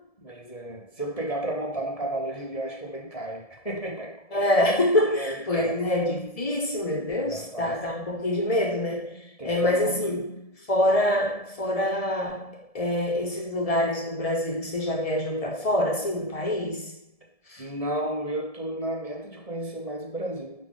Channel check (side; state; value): right; late; 1.7 ms